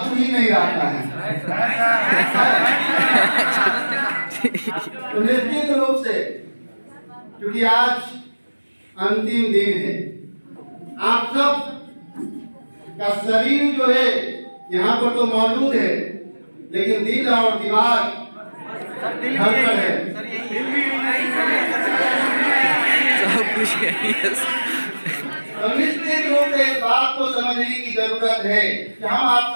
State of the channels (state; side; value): inverted; both; correlation -1.00